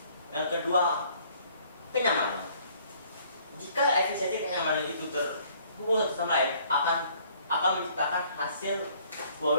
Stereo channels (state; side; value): inverted; both; correlation -0.59